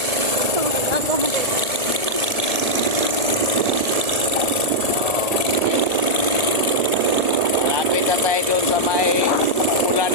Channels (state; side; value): late; left; 1.7 ms